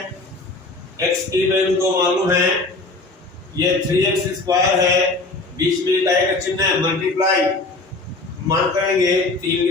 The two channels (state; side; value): quieter; right; 3.3 dB